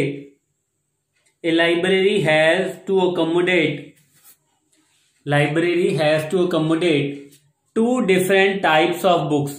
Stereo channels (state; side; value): identical; both; correlation 1.00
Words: a library has to accommodate two different types of books.